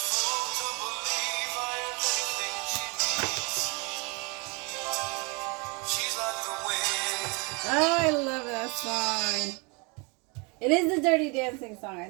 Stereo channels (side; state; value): left; quieter; 31.0 dB